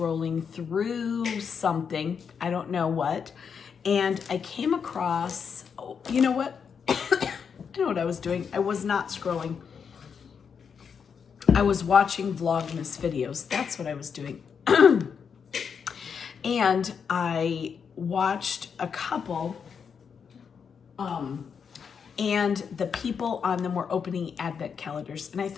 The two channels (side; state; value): right; quieter; 6.6 dB